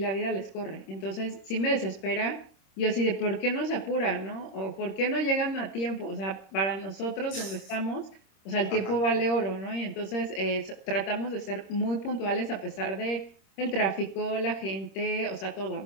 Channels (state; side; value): late; right; 26 ms